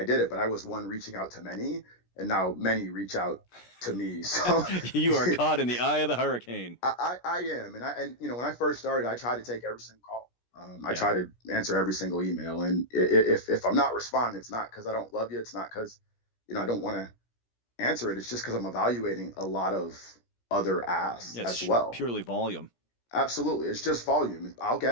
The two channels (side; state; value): right; late; 17 ms